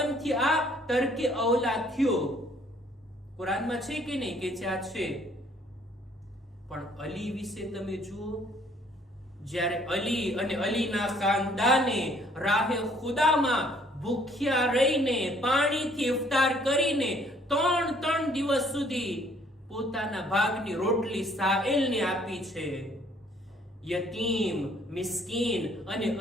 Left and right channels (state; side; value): normal; both; correlation 0.61